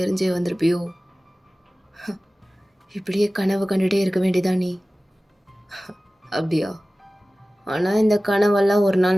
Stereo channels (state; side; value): normal; both; correlation 0.97